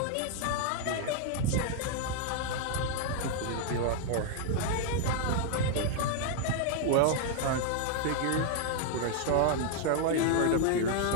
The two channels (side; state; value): both; different; correlation 0.00